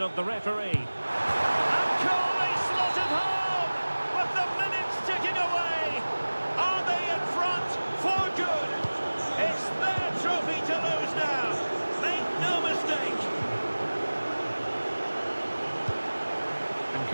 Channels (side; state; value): both; inverted; correlation -1.00